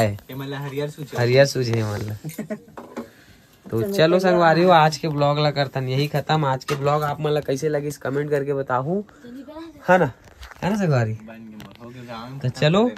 हरियर सूझे मतलब। तो चलो संगवारी हो आज के ब्लॉग ला करतन यही खत्म। आज के ब्लॉग आप मतलब कैसे लगे इस कमेंट करके बताओ, है ना संगवारी। तो चलो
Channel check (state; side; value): identical; both; correlation 1.00